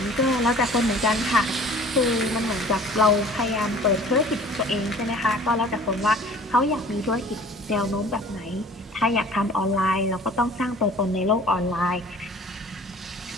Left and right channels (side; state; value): both; normal; correlation 0.48